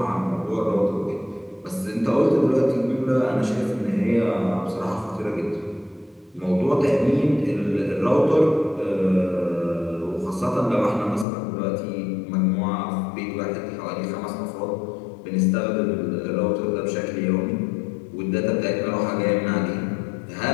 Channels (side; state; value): right; drops out; at 11.2 s